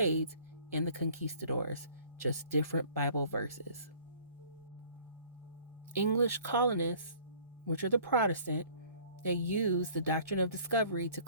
and the conquistadors, just different Bible verses. English colonists, which are the Protestant, they use the doctrine of discovery to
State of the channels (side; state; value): both; inverted; correlation -0.53